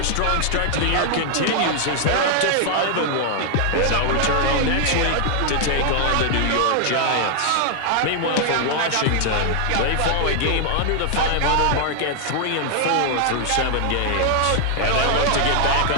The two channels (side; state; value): both; different; correlation 0.00